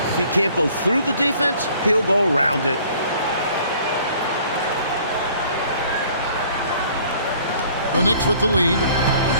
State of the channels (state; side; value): inverted; both; correlation -0.55